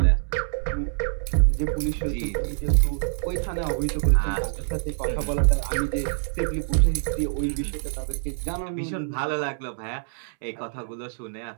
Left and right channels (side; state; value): left; silent; 61 dB below the other